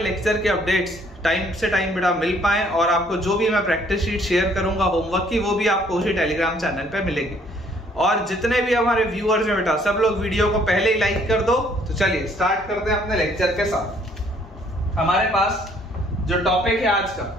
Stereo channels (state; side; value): normal; both; correlation 0.63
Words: के अपडेट्स टाइम से टाइम बेटा मिल पाए और आपको जो भी मैं प्रैक्टिस शीट शेयर करूंगा होमवर्क की, वो भी आपको उसी टेलीग्राम चैनल पे मिलेगी। और जितने भी हमारे व्यूअर्स हैं बेटा, सब लोग वीडियो को पहले ही लाइक कर दो। तो चलिए स्टार्ट करते हैं अपने लेक्चर के साथ। हमारे पास जो टॉपिक है आज का